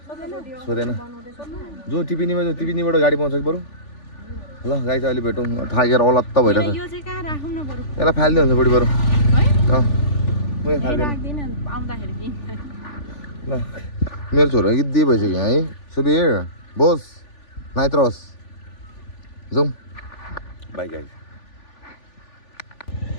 सोधेन जो टिपिनीबाट गाडी पाउँछ कि बरु ल गाई चाहिँ अहिले भेटौँ थाकेर अलत्त भइरहेछ यसलाई फालिदिनु हुन्छ बुढी बरु ल मेरो छोरो गिद्दी भइसक्यो है सुबिर बोस नाइत्रोस जाउँ बाई गाई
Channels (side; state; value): right; late; 3.4 ms